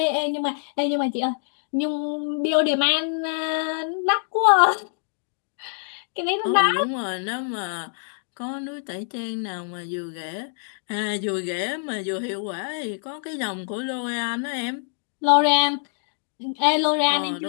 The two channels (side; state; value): right; silent; digital silence